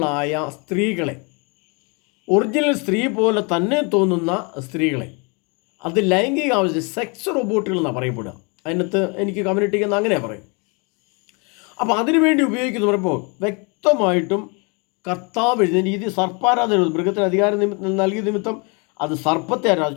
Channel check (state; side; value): quieter; right; 32.1 dB